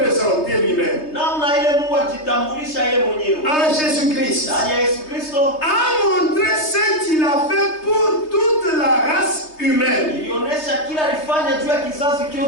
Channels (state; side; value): late; right; 3.3 ms